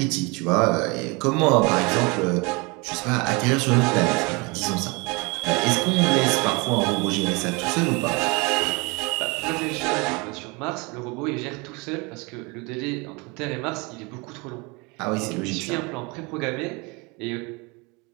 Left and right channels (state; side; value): quieter; left; 27.9 dB